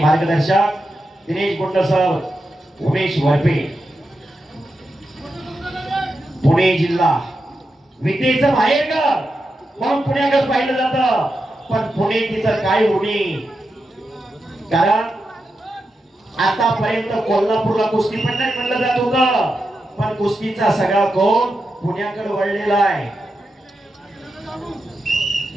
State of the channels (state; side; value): normal; both; correlation 0.88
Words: मार्गदर्शक दिनेश गुंड सर, उमेश वरपे। पुणे जिल्हा विद्येचं माहेरघर म्हणून पुण्याकडे पाहिलं जातं, पण पुणे तिचं काय उणी, कारण आतापर्यंत कोल्हापूरला कुस्ती पंढर म्हणलं जात होतं, पण कुस्तीचा सगळा कोण पुण्याकडे वळलेला आहे।